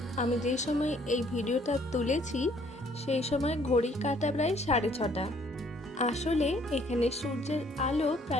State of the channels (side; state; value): both; normal; correlation 0.62